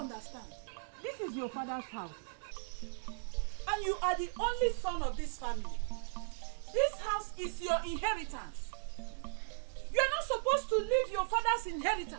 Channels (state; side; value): silent; left; digital silence